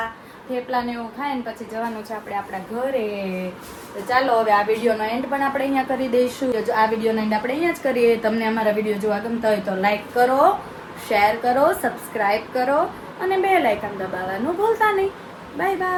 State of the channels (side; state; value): both; identical; correlation 1.00